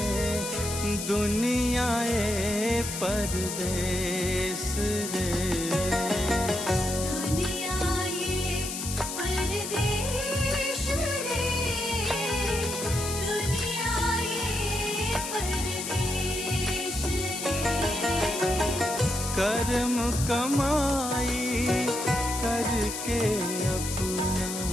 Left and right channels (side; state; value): left; noise; hiss, 5 dB below the sound